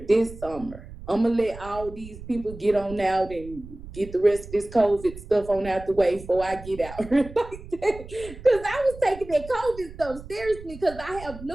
summer. I'm gonna let all these people get on out and get the rest of this COVID stuff on out the way before I get out. Like that. Because I was taking that COVID stuff seriously because I have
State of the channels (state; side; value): noise; right; rumble, 15 dB below the sound